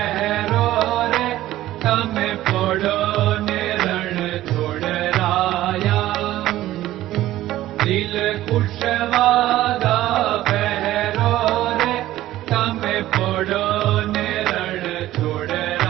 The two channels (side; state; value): left; quieter; 14.8 dB